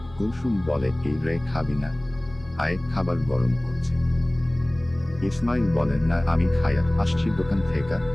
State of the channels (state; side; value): noise; left; rumble, 21 dB below the sound